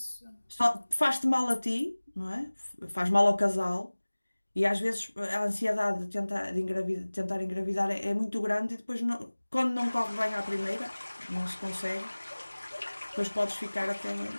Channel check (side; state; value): both; inverted; correlation -1.00